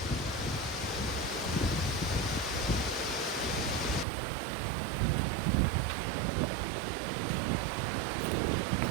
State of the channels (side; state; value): left; drops out; at 4.0 s